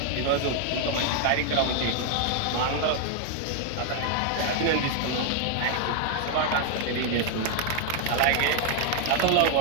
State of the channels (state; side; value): different; both; correlation 0.00